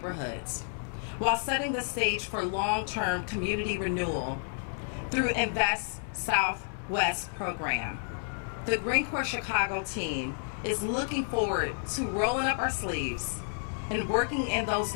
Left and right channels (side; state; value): right; silent; digital silence